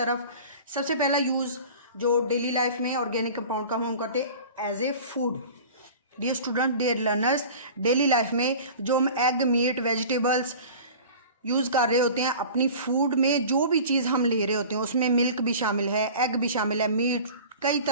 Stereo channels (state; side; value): inverted; both; correlation -0.40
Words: सबसे पहला यूज़ जो डेली लाइफ में ऑर्गेनिक कंपाउंड का हम करते हैं as a food. Dear student, dear learners, daily life में जो हम एग, मीट, वेजिटेबल्स यूज़ कर रहे होते हैं अपनी फूड में, जो भी चीज़ हम ले रहे होते हैं उसमें मिल्क भी शामिल है, एग भी शामिल है, मीट, कई